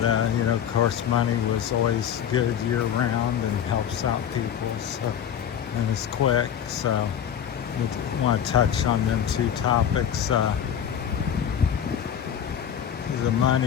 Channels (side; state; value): right; quieter; 9.1 dB